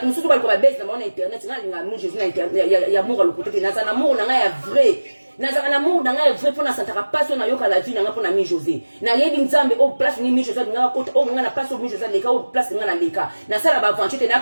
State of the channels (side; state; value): both; inverted; correlation -1.00